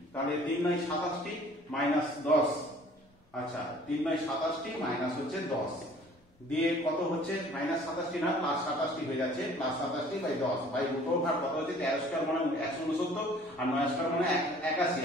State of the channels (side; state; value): both; normal; correlation 0.52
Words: তাহলে 3 বাই 27টি মাইনাস 10, আচ্ছা 3 বাই 27টি মাইনাস হচ্ছে 10 দিয়ে কত হচ্ছে মাইনাস 27টি না প্লাস 27টি হয়ে যাচ্ছে, প্লাস 27টি বাই 10 বাই রুট ওভার কত হচ্ছে 13 স্কয়ার মানে 169 আর 9 স্কয়ার মানে